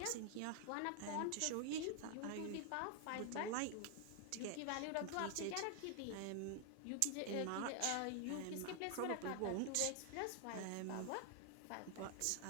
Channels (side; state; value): both; different; correlation 0.00